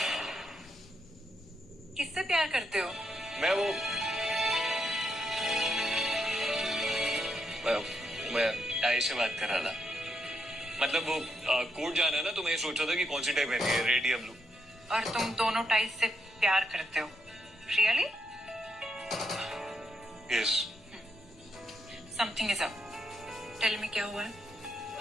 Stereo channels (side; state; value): left; noise; rumble, 25 dB below the sound